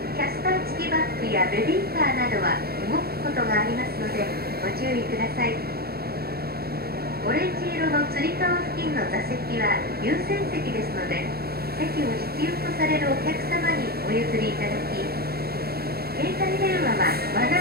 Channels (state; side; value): late; left; 0.45 ms